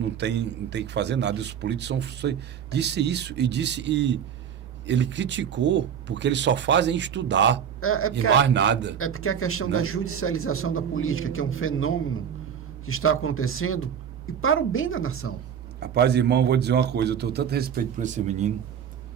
tem que fazer nada. E os políticos disse isso e ele criticou porque eles só fazem estudar e mais nada. É porque a questão da judicialização da política, que é um fenômeno que está acontecendo, e para o bem da nação. Rapaz, irmão, eu vou dizer uma coisa, eu tenho tanto respeito por esse menino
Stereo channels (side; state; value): left; quieter; 8.3 dB